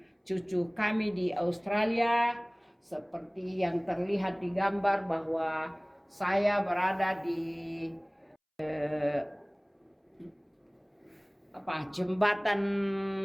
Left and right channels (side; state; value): both; identical; correlation 1.00